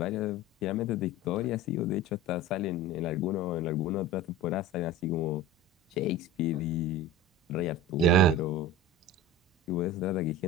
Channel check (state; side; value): normal; both; correlation 0.33